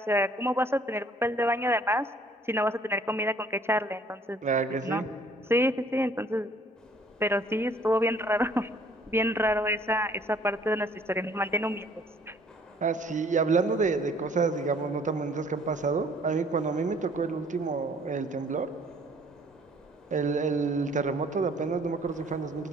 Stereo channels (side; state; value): both; normal; correlation 0.59